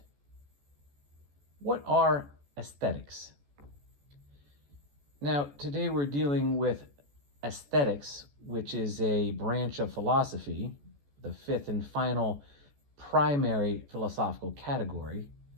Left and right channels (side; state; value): left; late; 14 ms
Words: What are aesthetics? Now, today we're dealing with aesthetics, which is a branch of philosophy, the fifth and final primary philosophical category,